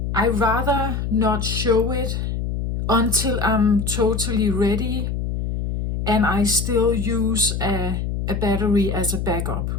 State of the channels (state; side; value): noise; left; hum, 2 dB below the sound